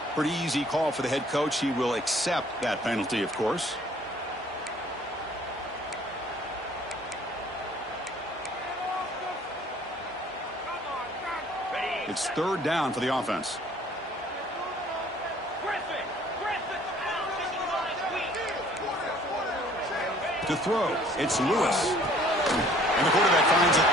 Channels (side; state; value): both; normal; correlation 0.56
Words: Pretty easy call for the head coach. He will accept that penalty, of course. It's third down for the offense. To throw, it's Lewis. And the quarterback finds an